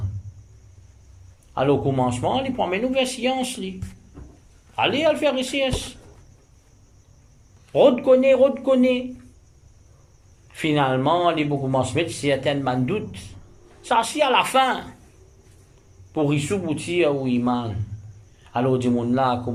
Alors, au commencement, il prend mes nouvelles sciences. Allez, à le faire ici. Redconnaît. Finalement, il commence à mettre certains doutes. Ça, c'est à la fin. Pour y souvenir ou iman. Alors, du monde là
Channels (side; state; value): both; identical; correlation 1.00